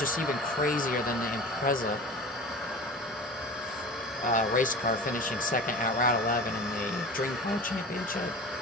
even crazier than the Impreza race car finishing second at Route 11 in the Dream Car Championship.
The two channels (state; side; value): normal; both; correlation 0.36